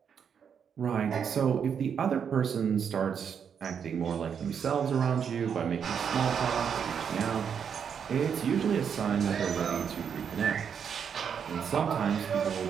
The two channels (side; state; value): left; quieter; 7.4 dB